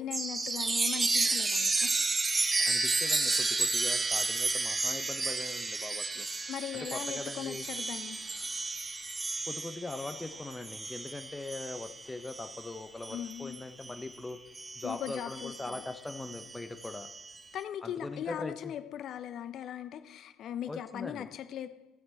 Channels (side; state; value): both; normal; correlation 0.88